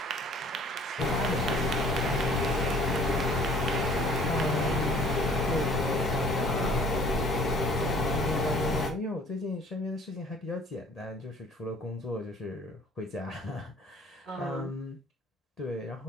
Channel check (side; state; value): both; normal; correlation 0.54